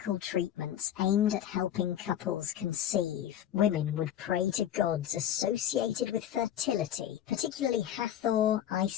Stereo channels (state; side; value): quieter; right; 10.9 dB